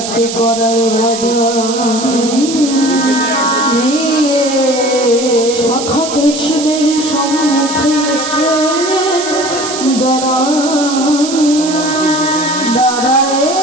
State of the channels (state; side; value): noise; right; hiss, 7 dB below the sound